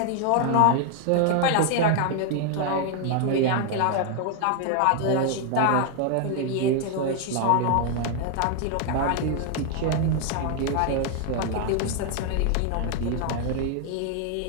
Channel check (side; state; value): both; different; correlation 0.00